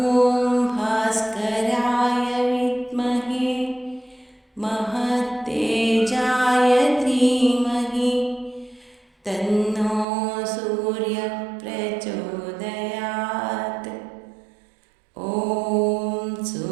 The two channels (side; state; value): left; drops out; at 10.1 s